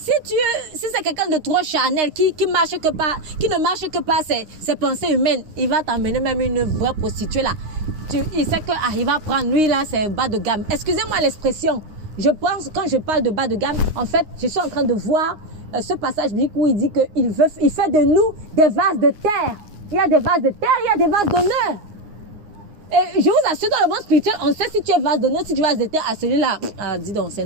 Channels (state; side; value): late; left; 9.7 ms